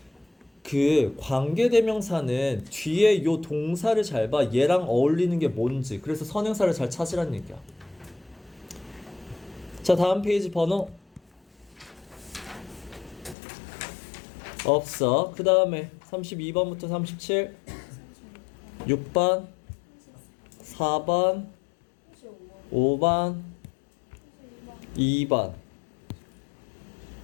그 관계대명사는 뒤에 요 동사를 잘 봐. 얘랑 어울리는 게 뭔지. 그래서 선행사를 잘 찾으라는 얘기야. 자, 다음 페이지 번호 없어. 그 다음에 32번부터 37 6번 4번 5번 2번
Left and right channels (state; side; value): drops out; right; at 13.4 s